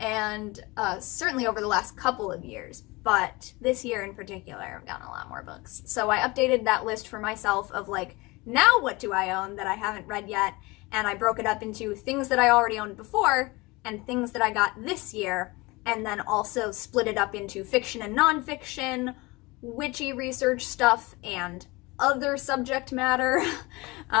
certainly over the last couple of years, but this year in particular, I've gotten a lot more books. So I updated that list for myself of, like, now what do I own that I haven't read yet? And I broke it up into things that I already owned before and things that I got this year, and then also split it up into fiction and nonfiction, witchy research stuff and other subject matter.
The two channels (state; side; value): quieter; right; 23.6 dB